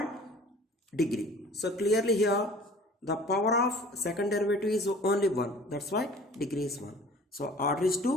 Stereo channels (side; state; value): both; normal; correlation 0.47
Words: degree. So clearly here the power of second derivative is only 1. That's why degree is 1. So order is